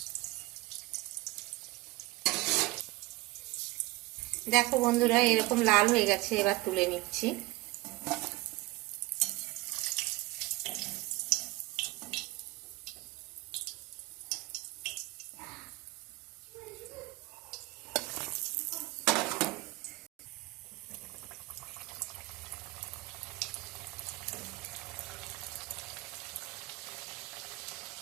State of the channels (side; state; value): left; quieter; 20.6 dB